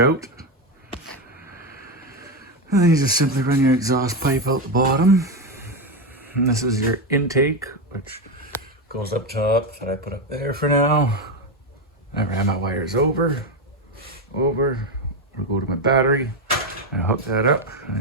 And then you just simply run your exhaust pipe out the bottom. And this is your intake, which goes up top, that I put up there for now. I ran my wires over, I'll go to my battery, and hook that up, and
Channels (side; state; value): both; normal; correlation 0.11